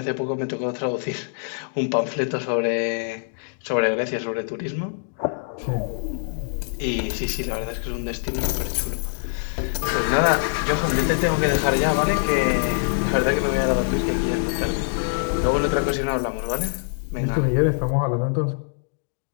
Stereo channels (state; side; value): silent; right; digital silence